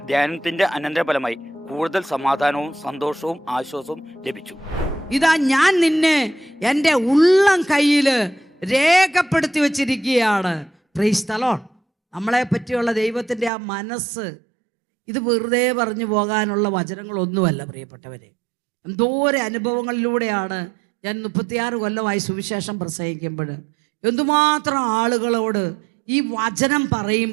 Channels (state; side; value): drops out; left; at 13.5 s